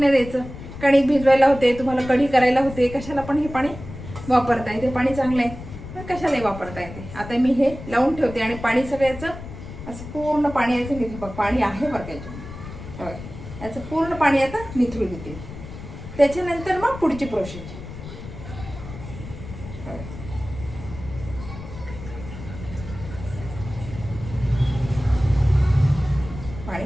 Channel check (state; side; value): noise; left; rumble, 12 dB below the sound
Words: द्यायचं. कणिक भिजवायला होते, तुम्हाला कढी करायला होते, कशाला पण हे पाणी वापरता येते. पाणी चांगलं आहे, पण कशालाही वापरता येते. आता मी हे लावून ठेवते आणि पाणी सगळ्याचं असं पूर्ण पाणी याचं निघू. बघ पाणी आहे बरं त्याच्यामध्ये, याचं पूर्ण पाणी आता निथळू देते. त्याच्यानंतर मग पुढची प्रोसेस. पाणी